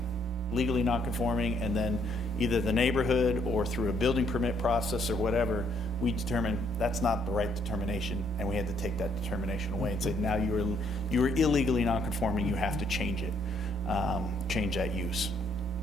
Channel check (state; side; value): normal; both; correlation 0.69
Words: legally non-conforming, and then either the neighborhood or through a building permit process or whatever, we determined that's not the right determination, and we had to take that determination away and say, now you are illegally non-conforming, you have to change it, change that use.